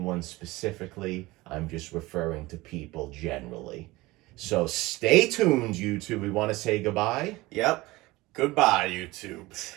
specifically. I'm just referring to people generally. So stay tuned, YouTube. We want to say goodbye. Yep. Goodbye, YouTube.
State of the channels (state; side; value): quieter; left; 20.3 dB